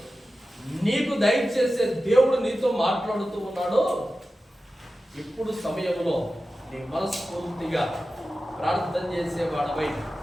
నీకు దయచేసే దేవుడు నీతో మాట్లాడుతూ ఉన్నాడు. ఇప్పుడు సమయంలో నీ మనస్ఫూర్తిగా ప్రార్థన చేసేవాడవై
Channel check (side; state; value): both; normal; correlation 0.94